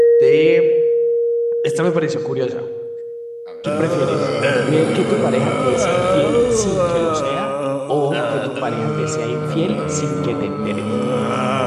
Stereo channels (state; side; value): identical; both; correlation 1.00